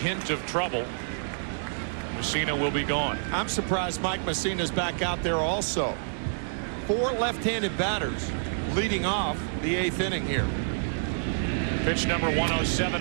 of trouble, Messina will be gone. I'm surprised Mike Messina's back out there also. 4 left-handed batters leading off the 8th inning here. Pitch number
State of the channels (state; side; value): silent; left; digital silence